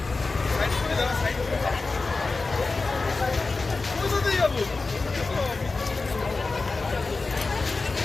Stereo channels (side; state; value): right; quieter; 3.8 dB